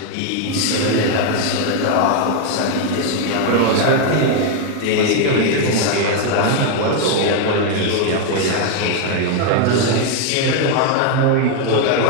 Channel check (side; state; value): both; different; correlation 0.01